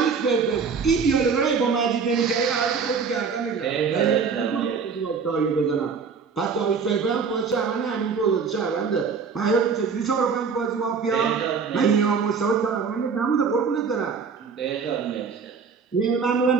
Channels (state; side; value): quieter; left; 5.7 dB